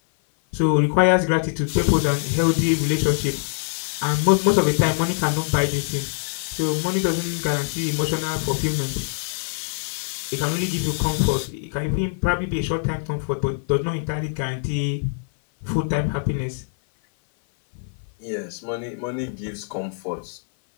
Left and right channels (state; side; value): silent; right; 56 dB below the other